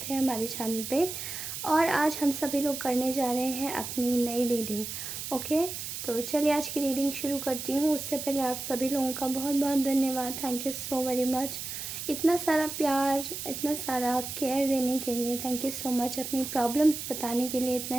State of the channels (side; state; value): right; noise; hiss, 6 dB below the sound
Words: है हमारे चैनल पे। और आज हम सभी लोग करने जा रहे हैं अपनी नई रीडिंग। ओके, तो चलिए आज की रीडिंग शुरू करती हूँ। उससे पहले आप सभी लोगों का बहुत बहुत धन्यवाद। Thank you so very much. इतना सारा प्यार, इतना सारा केयर देने के लिए थैंक यू सो मच। अपनी प्रॉब्लम्स बताने के लिए, इतना